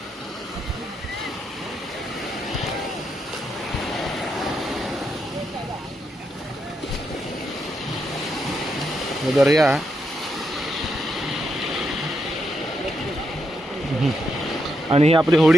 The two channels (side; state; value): both; normal; correlation 0.81